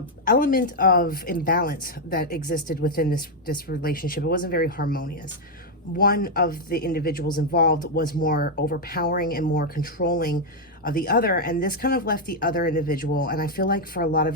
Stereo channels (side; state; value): both; normal; correlation 0.01